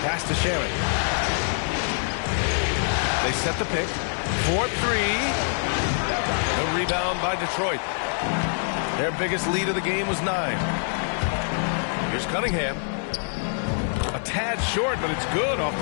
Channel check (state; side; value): silent; right; 62 dB below the other